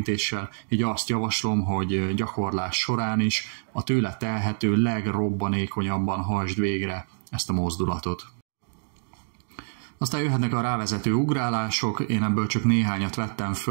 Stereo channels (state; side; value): silent; left; digital silence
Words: így azt javaslom, hogy gyakorlás során is a tőle telhető legrobbanékonyabban hajtsd végre ezt a mozdulatot. Aztán jöhetnek a rávezető ugrálások, én ebből csak néhányat vettem